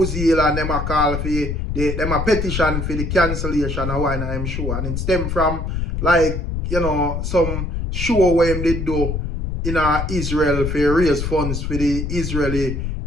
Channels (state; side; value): noise; left; rumble, 3 dB below the sound